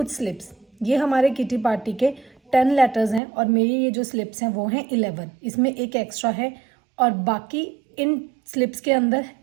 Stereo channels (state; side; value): drops out; left; at 3.2 s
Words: स्लिप्स। ये हमारे किटी पार्टी के 10 लेटर्स हैं और मेरी ये जो स्लिप्स हैं वो हैं 11। इसमें एक एक्स्ट्रा है और बाकी इन स्लिप्स के अंदर